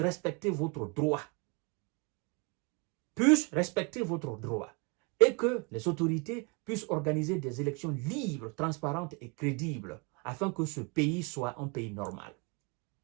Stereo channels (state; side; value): quieter; left; 31.6 dB